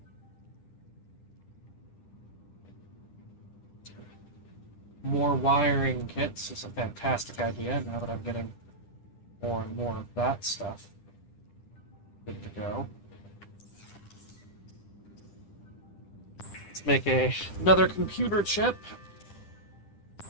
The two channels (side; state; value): right; late; 10 ms